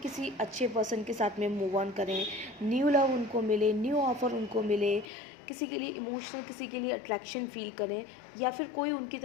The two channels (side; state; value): right; drops out; at 5.1 s